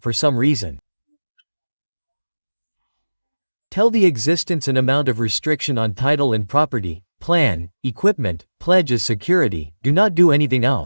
some reason. Tell the existence and amount of restriction on title and property, plan, equipment, pledge as security, do not do anything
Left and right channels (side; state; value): both; inverted; correlation -1.00